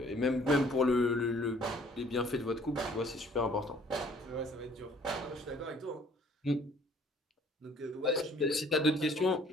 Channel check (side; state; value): both; normal; correlation 0.58